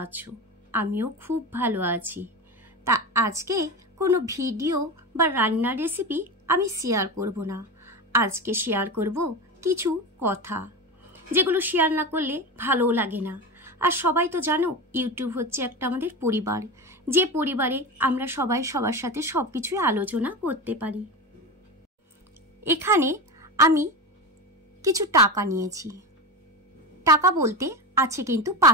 আছো। আমিও খুব ভালো আছি। তা আজকে কোনো ভিডিও বা রান্নার রেসিপি আমি শেয়ার করব না। আজকে শেয়ার করব কিছু কথা, যেগুলো শেয়ার না করলে ভালোও লাগে না। আর সবাই তো জানো, ইউটিউব হচ্ছে একটা আমাদের পরিবার, যে পরিবারে আমরা সবাই সবার সাথে সব কিছুই আলোচনা করতে পারি। এখানে আমি কিছু টাকা নিয়েছি। টাকা বলতে আছে কিন্তু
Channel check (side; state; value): both; normal; correlation 0.23